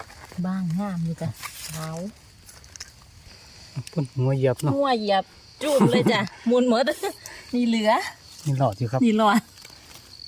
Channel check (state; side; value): identical; both; correlation 1.00